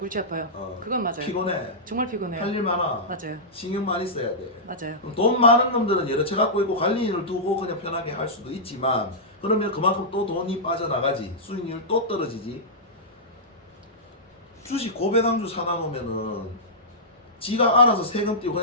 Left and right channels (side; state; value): both; normal; correlation -0.13